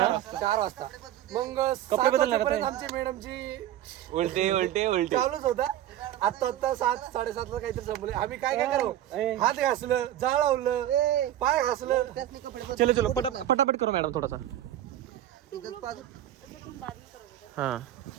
वाजता. मग कपडे बदलणार 7 वाजेपर्यंत आता. आमची मॅडमची उलटे चालूच होता. आता 7 साडेसात ला काहीतरी संपले. आम्ही काय करू? ए. हात घासलं, जाळ लावलं, पाय घासलं. चलो चलो फटाफट करो मैडम थोड़ा सा अच्छा, तुम बाद में करोगे। हाँ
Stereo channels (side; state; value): left; quieter; 12.5 dB